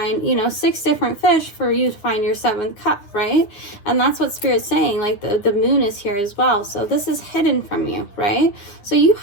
you know, 6 different fish for you to find your 7th cup, right? And that's what Spirit's saying. Like, the moon is here as well. So this is hidden from you, right? So you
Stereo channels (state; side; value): late; right; 9.8 ms